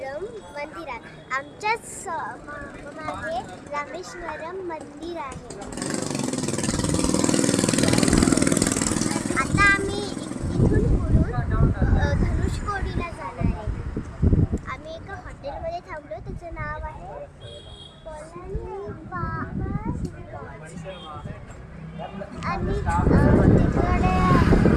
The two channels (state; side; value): identical; both; correlation 1.00